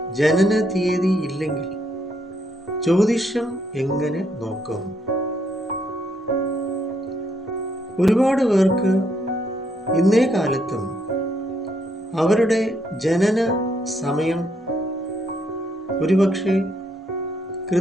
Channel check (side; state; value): both; normal; correlation 0.74